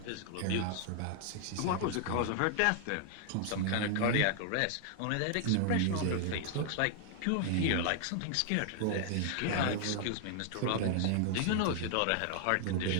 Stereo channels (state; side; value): different; both; correlation 0.00